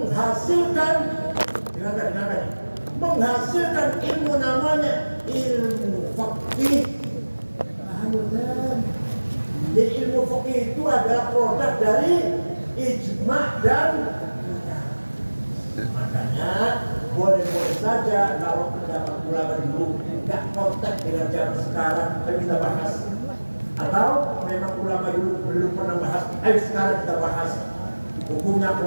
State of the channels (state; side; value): inverted; both; correlation -1.00